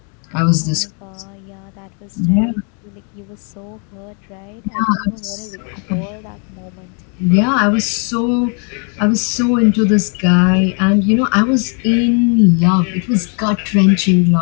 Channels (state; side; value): quieter; right; 39.0 dB